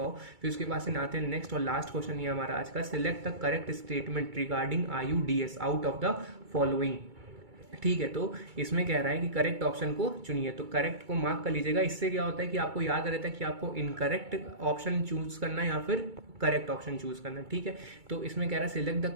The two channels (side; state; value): left; late; 2.3 ms